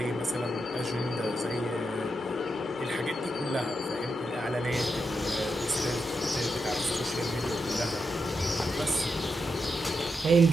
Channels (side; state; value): both; normal; correlation 0.85